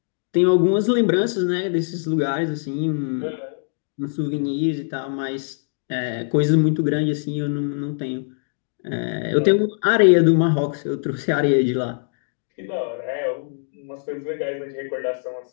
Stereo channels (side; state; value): right; silent; digital silence